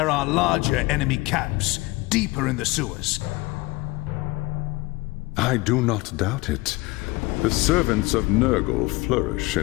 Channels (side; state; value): right; quieter; 22.4 dB